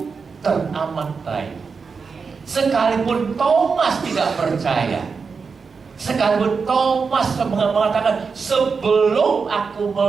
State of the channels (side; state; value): left; quieter; 5.2 dB